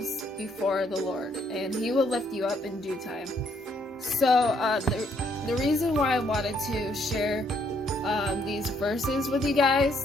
before the Lord, and he will lift you up in due time." So the reason why I wanted to share these verses with you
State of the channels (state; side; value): normal; both; correlation 0.70